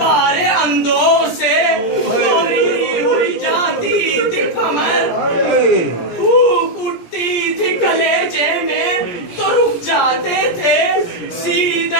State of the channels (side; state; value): right; late; 17 ms